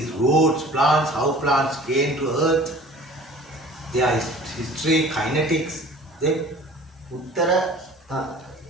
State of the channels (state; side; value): normal; both; correlation 0.46